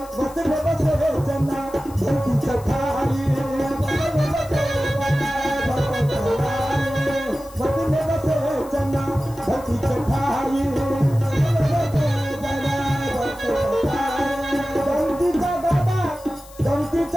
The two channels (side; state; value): left; noise; hiss, 22 dB below the sound